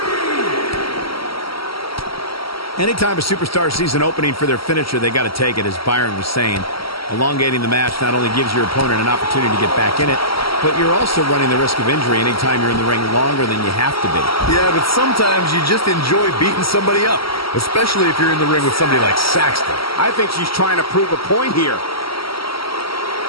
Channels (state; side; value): late; right; 0.75 ms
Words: Anytime a superstar sees an opening for their finisher, they got to take it, as Byron was saying. Elongating the match not only gives your opponent an opportunity to get back in it, but you're also running the risk of injury anytime you're in the ring longer than you have to be. Yeah, but sometimes you just enjoy beating somebody up, especially if you're in the ring with somebody like Saxton. I think she's trying to prove a point here.